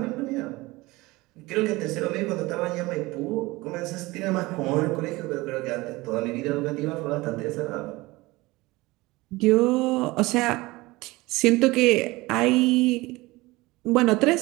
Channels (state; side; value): quieter; left; 21.2 dB